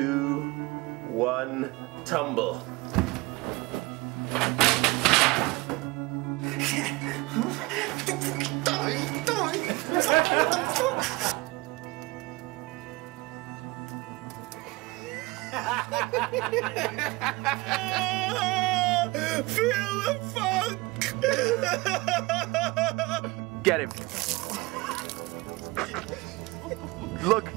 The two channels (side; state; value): left; quieter; 22.9 dB